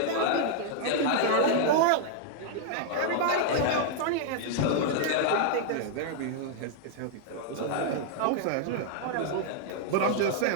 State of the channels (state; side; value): different; both; correlation 0.00